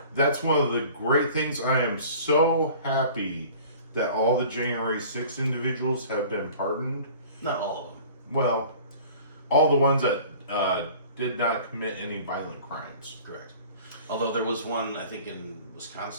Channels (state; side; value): inverted; both; correlation -0.45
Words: that's one of the great things. I am so happy that all the January 6th individuals have been pardoned. Not all of them. Well, all the ones that did not commit any violent crimes. Correct. Although there was one, I think in